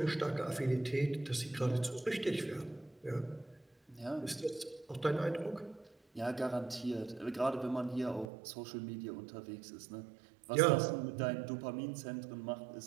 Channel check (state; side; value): drops out; left; at 8.3 s